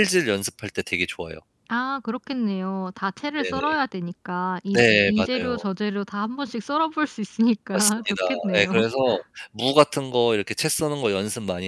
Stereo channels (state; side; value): identical; both; correlation 1.00